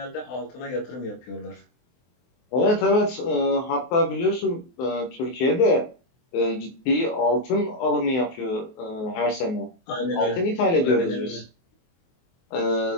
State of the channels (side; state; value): right; late; 23 ms